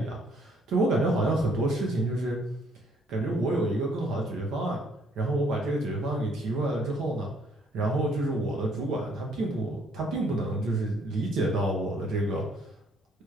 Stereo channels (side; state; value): both; normal; correlation 0.64